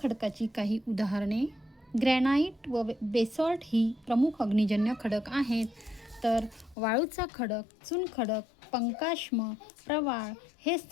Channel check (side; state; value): right; drops out; at 6.8 s